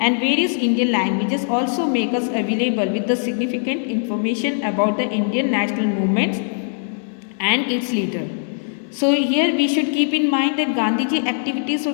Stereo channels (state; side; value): silent; right; digital silence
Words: and various Indian languages also make us available with the significant information about the Indian national movements and its leader. So here we should keep in mind that Gandhiji activities